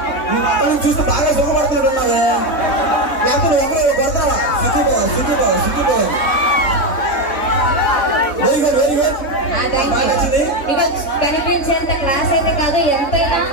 చూస్తే బాగా సుఖపడుతున్నట్టున్నావే. లేకపోతే ఒకరు కొడతావా? సుఖిపోవాలి. Very good very good. ఇక కనిపించేంత క్లాస్ అయితే కాదు, ఎంతైనా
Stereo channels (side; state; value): right; late; 3.6 ms